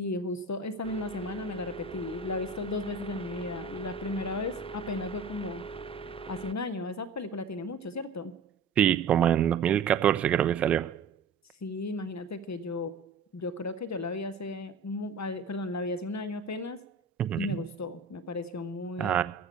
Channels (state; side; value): quieter; left; 4.5 dB